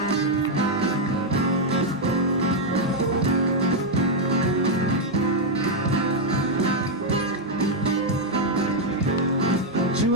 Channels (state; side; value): normal; both; correlation 0.00